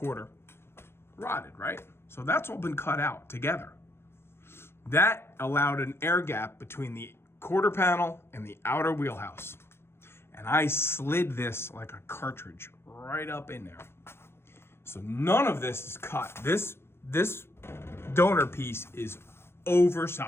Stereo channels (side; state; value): right; late; 0.12 ms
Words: rotted, right? So that's all been cut out together. That allowed an air gap between the quarter panel and the outer wheelhouse. And I slid this like a cartridge right up in there. So none of this is cut. This donor piece is